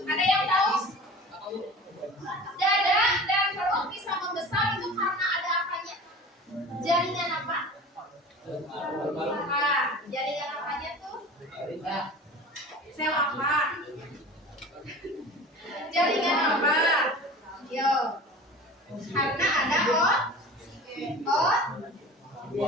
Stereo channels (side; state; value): both; normal; correlation 0.38